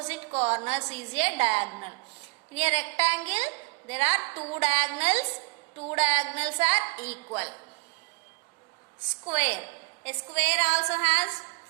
corners is a diagonal. In a rectangle, there are 2 diagonals. 2 diagonals are equal. Square. A square also has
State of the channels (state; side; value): quieter; left; 29.2 dB